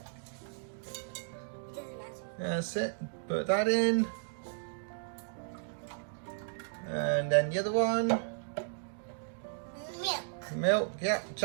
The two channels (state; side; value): silent; left; digital silence